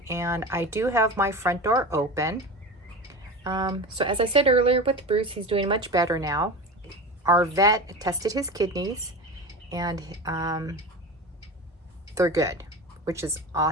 and I do have my front door open. So as I said earlier with Bruce, he's doing much better now. Our vet tested his kidneys and they're good, which is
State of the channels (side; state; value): both; normal; correlation 0.29